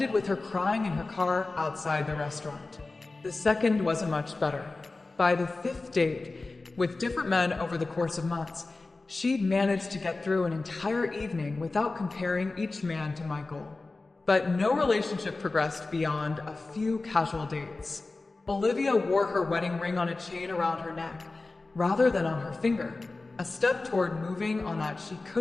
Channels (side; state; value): right; quieter; 3.4 dB